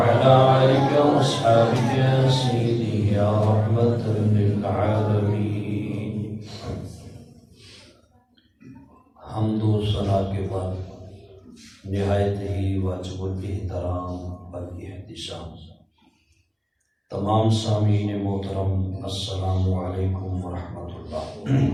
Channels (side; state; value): both; identical; correlation 1.00